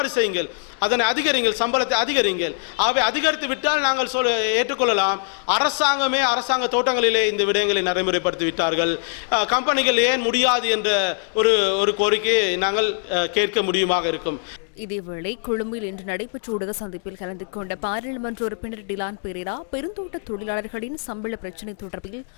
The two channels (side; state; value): right; silent; digital silence